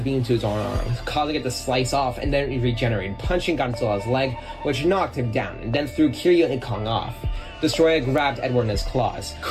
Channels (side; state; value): both; identical; correlation 1.00